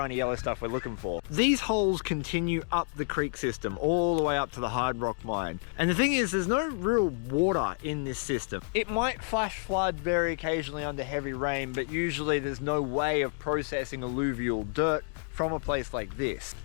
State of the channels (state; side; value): quieter; right; 36.5 dB